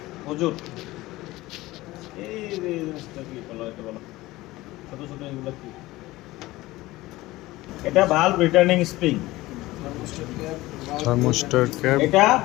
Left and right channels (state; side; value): quieter; right; 18.5 dB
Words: হুজুর এই যে জিনিসটা কি বলো, এটা বলো ছোট ছোট এগুলো কি? এটা valve returning spring, Thermostat cap. এটা